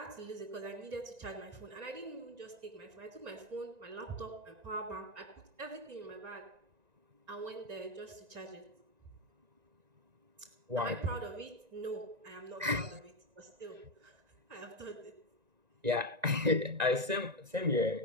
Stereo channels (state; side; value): late; left; 1.9 ms